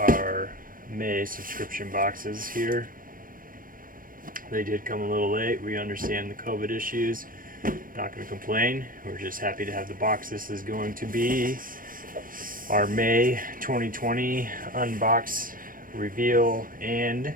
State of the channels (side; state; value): left; late; 0.40 ms